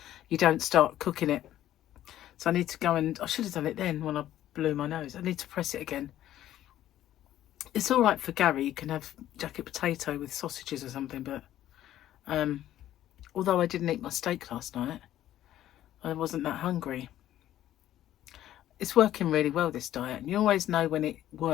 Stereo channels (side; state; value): right; quieter; 12.8 dB